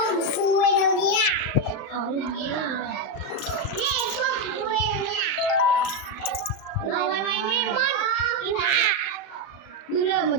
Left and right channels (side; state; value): right; late; 35 ms